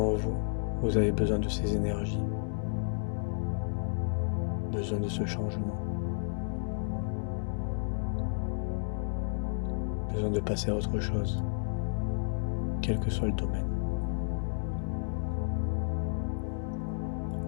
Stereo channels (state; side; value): silent; right; digital silence